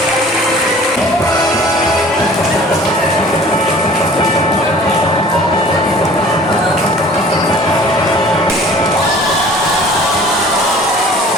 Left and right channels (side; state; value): both; normal; correlation 0.48